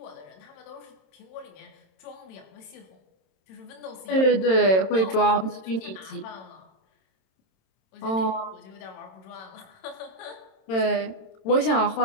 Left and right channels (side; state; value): right; late; 27 ms